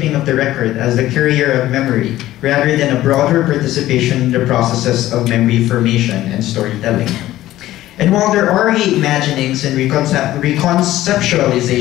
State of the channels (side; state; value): right; quieter; 14.8 dB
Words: of the record as the carrier of memory, rather than a broader participation in the processes of memory formation and storytelling. And while there are reimaginings and